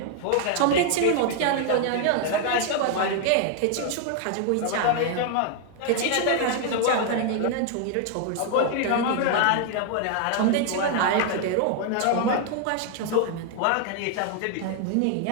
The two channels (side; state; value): both; different; correlation 0.00